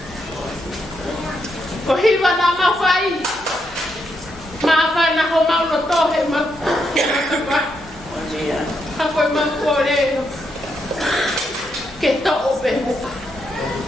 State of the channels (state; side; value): noise; left; hum, 22 dB below the sound